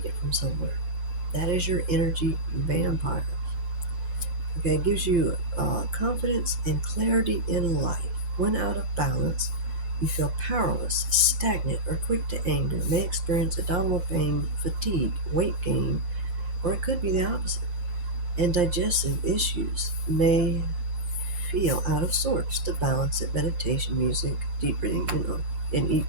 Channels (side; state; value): left; late; 6.7 ms